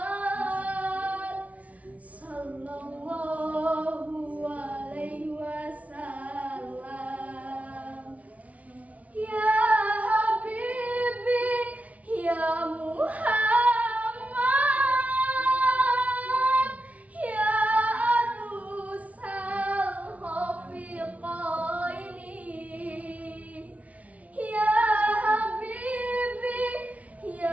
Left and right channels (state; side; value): late; left; 0.069 ms